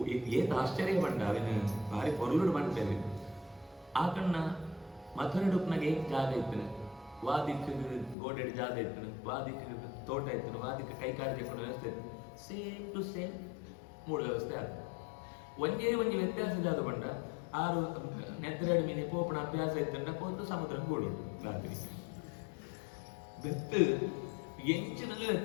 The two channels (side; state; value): right; drops out; at 8.2 s